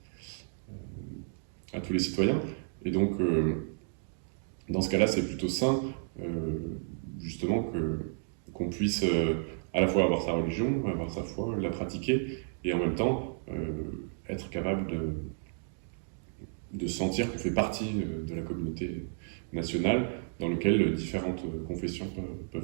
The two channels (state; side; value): silent; left; digital silence